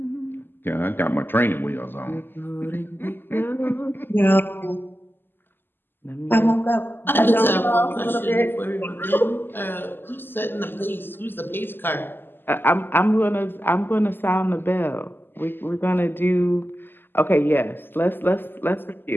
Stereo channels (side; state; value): right; late; 0.097 ms